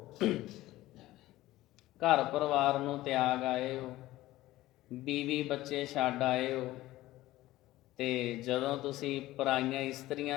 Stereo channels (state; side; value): quieter; right; 16.6 dB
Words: ਘਰ ਪਰਿਵਾਰ ਨੂੰ ਤਿਆਗ ਆਏ ਹੋ, ਬੀਵੀ ਬੱਚੇ ਛੱਡ ਆਏ ਹੋ, ਤੇ ਜਦੋਂ ਤੁਸੀਂ ਪਰਾਈਆਂ